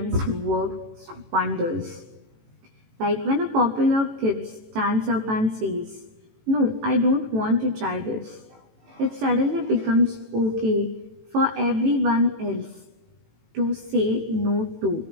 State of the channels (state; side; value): late; left; 18 ms